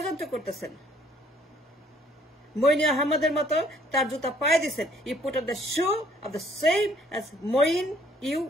করতেছেন। মইন আহমদের মতো তার জুতা পায়ে দিচ্ছেন। You put on the shoe of the same as Moeen U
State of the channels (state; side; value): normal; both; correlation 0.61